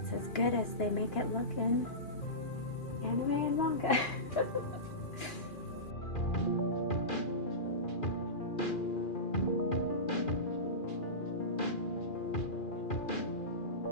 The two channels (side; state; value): right; late; 2.2 ms